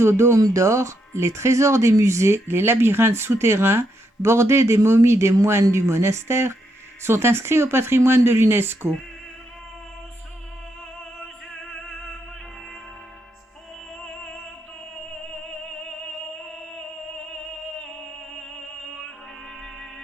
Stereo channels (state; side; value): normal; both; correlation 0.79